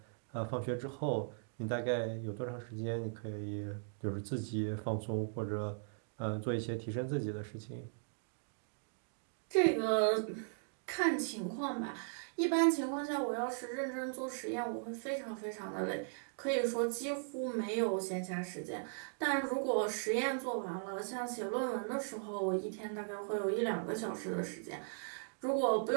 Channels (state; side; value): silent; left; digital silence